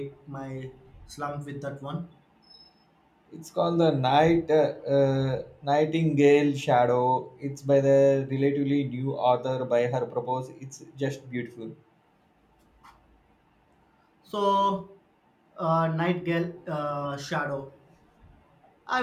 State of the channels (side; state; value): both; identical; correlation 1.00